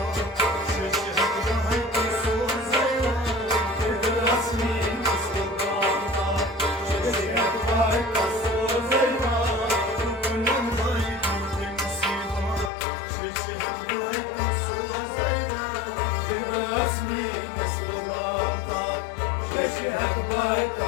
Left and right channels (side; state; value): right; drops out; at 12.7 s